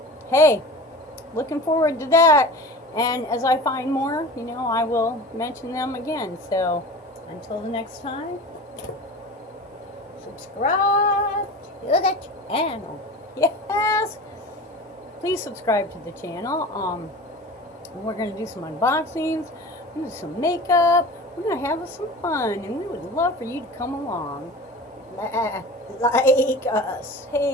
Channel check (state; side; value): normal; both; correlation 0.35